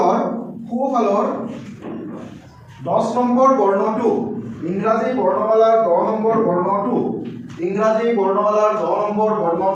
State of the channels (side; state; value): both; identical; correlation 1.00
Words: 10 নম্বৰ বৰ্ণটো ইংৰাজী বৰ্ণমালাৰ 10 নম্বৰ বৰ্ণটো ইংৰাজী বৰ্ণমালাৰ 10 নম্বৰ